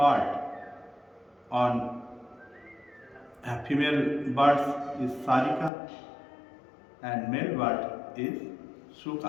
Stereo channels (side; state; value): right; drops out; at 5.7 s